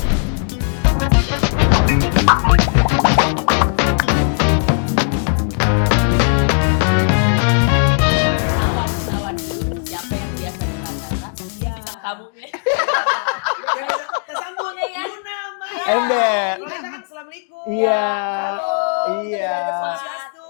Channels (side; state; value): right; silent; 58 dB below the other